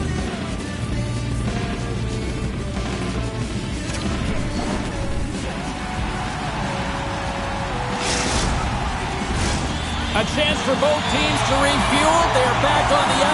A chance for both teams to refuel. They're back on the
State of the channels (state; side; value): identical; both; correlation 1.00